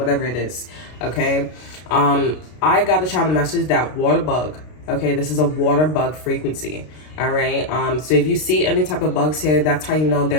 it is, okay? I got a channel message that water bug, okay? This is a water bug frequency, all right? So if you see any type of bugs here, that's how you know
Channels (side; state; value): right; late; 33 ms